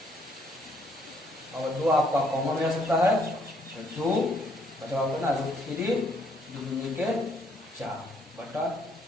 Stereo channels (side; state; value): both; normal; correlation 0.68